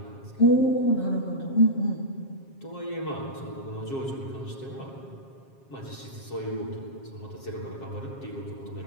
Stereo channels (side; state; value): right; late; 7.4 ms